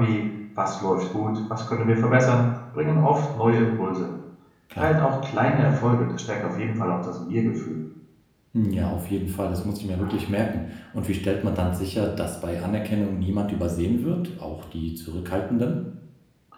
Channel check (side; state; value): both; identical; correlation 1.00